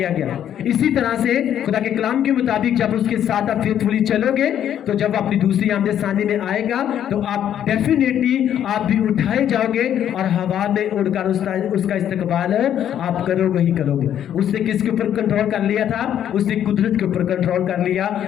गया। इसी तरह से खुदा के कलाम के मुताबिक जब उसके साथ आप फेथफुली चलोगे, तो जब अपनी दूसरी आमद सानी में आएगा तो आप डेफिनेटली आप भी उठाए जाओगे और हवा में उड़कर उसका इस्तकबाल आप करोगे ही करोगे। उसने किसके ऊपर कंट्रोल कर लिया था? उसने कुदरत के ऊपर कंट्रोल कर लिया,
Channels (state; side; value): quieter; right; 10.2 dB